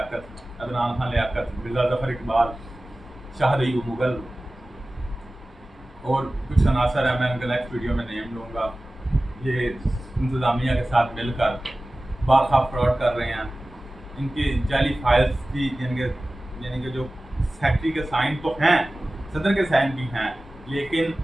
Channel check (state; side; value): normal; both; correlation 0.97